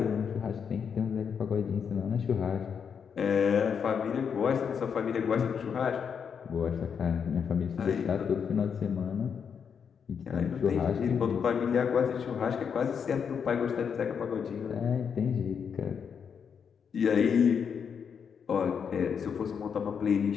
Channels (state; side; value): quieter; right; 6.9 dB